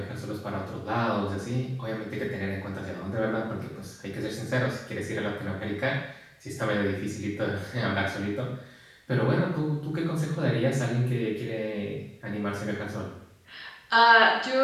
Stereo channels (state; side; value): identical; both; correlation 1.00